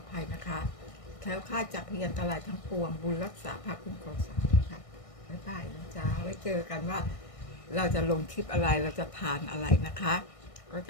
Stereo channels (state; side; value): late; right; 1.6 ms